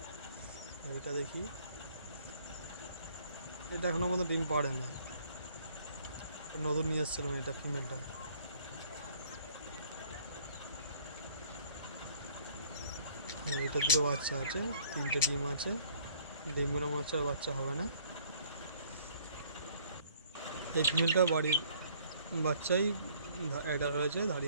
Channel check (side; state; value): both; inverted; correlation -0.59